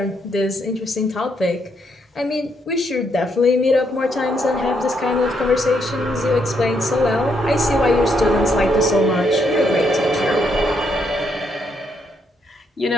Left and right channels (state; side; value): normal; both; correlation 0.75